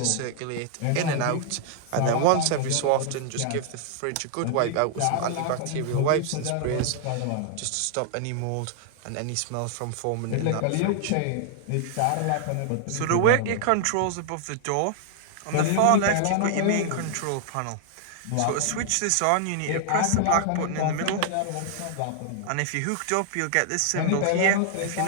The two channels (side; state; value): both; different; correlation 0.00